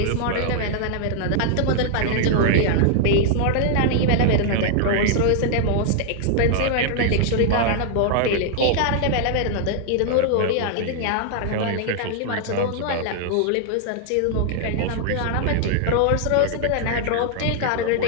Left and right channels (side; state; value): both; different; correlation -0.01